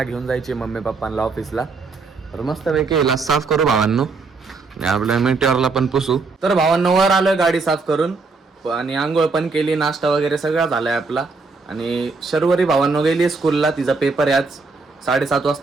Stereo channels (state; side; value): quieter; left; 4.1 dB